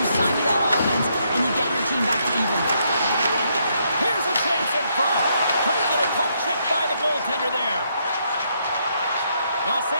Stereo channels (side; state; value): both; inverted; correlation -0.75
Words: stymie that offense and you get your team back to even. Here's a chance in front. Great little poke check by the goaltender there. Los